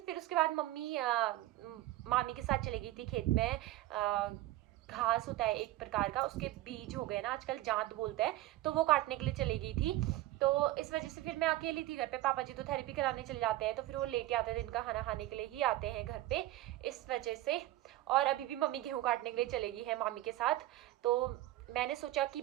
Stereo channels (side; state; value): left; quieter; 16.1 dB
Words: फिर उसके बाद मामी के साथ चली गई थी खेत में। घास होता है एक प्रकार का, उसके बीज हो गए ना, आजकल जांत बोलते हैं, तो वो काटने के लिए चली गई थी। तो इस वजह से फिर मैं अकेली थी घर पे। पापा जी तो थेरेपी कराने चले जाते हैं, तो फिर वो लेट आते हैं, दिन का खाना खाने के लिए ही आते हैं घर पे, इस वजह से। और अभी भी मम्मी गेहूँ काटने के लिए चलेगी है मामी के साथ। तो मैंने सोचा कि